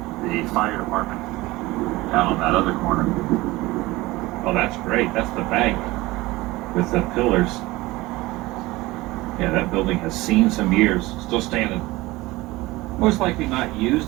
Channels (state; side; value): quieter; left; 19.9 dB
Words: the fire department down on that other corner. Oh, that's great. That's the bank with the pillars. Yeah, that building has seen some years. Still standing. Most likely not